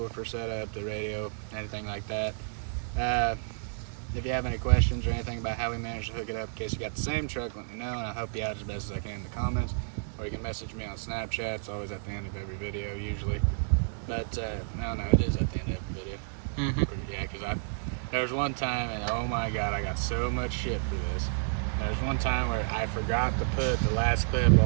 setup, the radio, anything like that. If you have any questions or anything about how we managed to hook it up, in case you got the same truck, let me know, and I'll help you out as best as I can in the comments. Or you can message me on Snapchat. It's always at the end of every video, usually. But, I don't know, it is at the end of every video. Yeah, because there was one time, and oh my god, I got so much shit for this. There was one time where I forgot to put the last clip of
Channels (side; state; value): left; silent; digital silence